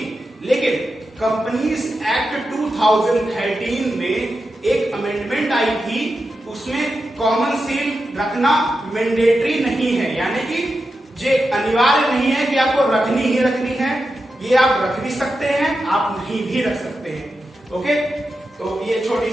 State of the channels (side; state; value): both; normal; correlation 0.89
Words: लेकिन कंपनीज एक्ट 2013 में एक अमेंडमेंट आई थी, उसमें कॉमन सील रखना मैंडेटरी नहीं है, यानी कि ये अनिवार्य नहीं है कि आपको रखनी ही रखनी है। ये आप रख भी सकते हैं, आप नहीं भी रख सकते हैं। ओके, तो ये छोटी